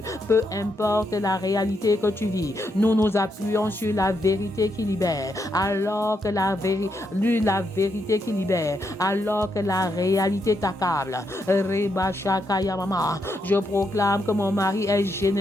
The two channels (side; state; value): both; normal; correlation 0.80